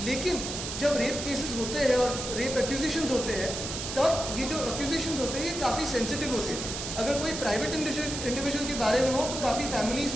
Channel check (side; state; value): right; noise; hiss, 5 dB below the sound